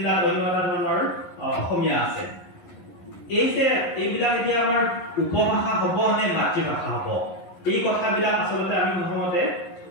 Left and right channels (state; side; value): late; right; 11 ms